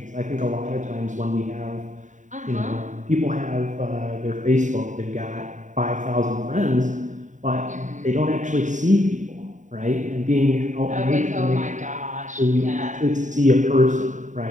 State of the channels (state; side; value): late; left; 0.36 ms